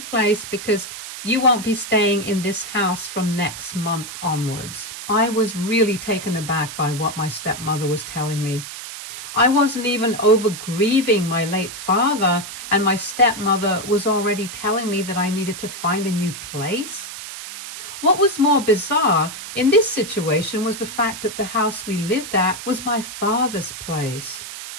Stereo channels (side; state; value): right; noise; hiss, 10 dB below the sound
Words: place because you won't be staying in this house from next month onwards. I was really taken aback by what my stepmother was telling me. I wasn't even over grieving my late father, and my stepmother was already telling me that I needed to find a new place. What was more bizarre in this situation was the fact that the house we lived at was my father's place.